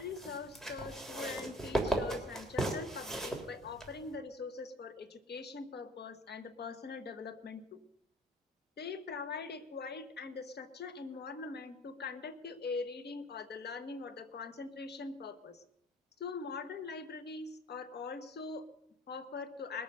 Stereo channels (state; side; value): normal; both; correlation 0.49